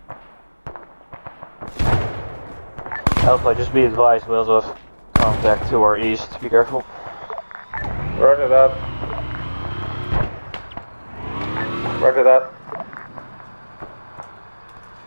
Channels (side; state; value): both; inverted; correlation -1.00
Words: Alpha, just be advised, we also have contact to our east, be careful. Roger that. Roger that.